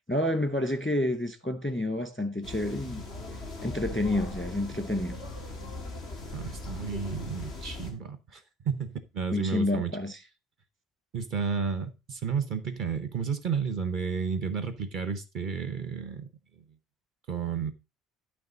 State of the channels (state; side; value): normal; both; correlation 0.47